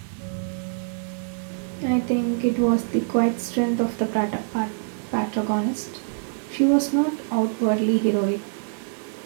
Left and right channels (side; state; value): left; silent; 61 dB below the other